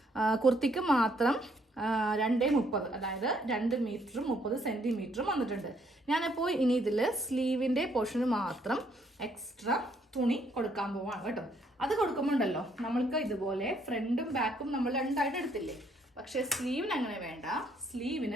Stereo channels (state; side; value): normal; both; correlation 0.69